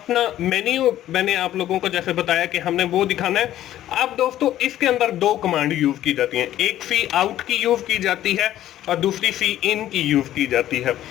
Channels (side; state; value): right; quieter; 12.9 dB